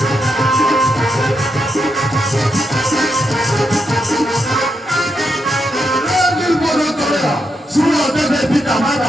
শুনো দেবে পিতা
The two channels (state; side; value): normal; both; correlation 0.82